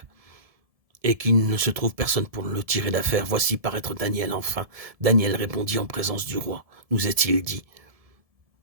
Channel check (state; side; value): late; left; 1.7 ms